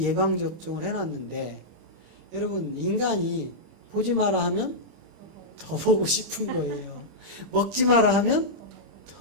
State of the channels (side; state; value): left; late; 25 ms